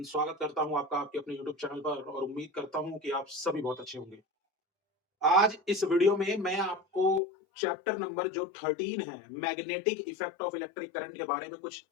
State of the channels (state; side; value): drops out; right; at 7.2 s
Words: स्वागत करता हूँ आपका आपके अपने यूट्यूब चैनल पर और उम्मीद करता हूँ कि आप सभी बहुत अच्छे होंगे। आज इस वीडियो में मैं आपको चैप्टर नंबर जो 13 है, magnetic effect of electric current के बारे में कुछ